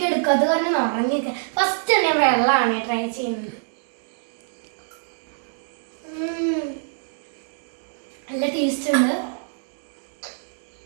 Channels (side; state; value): left; silent; digital silence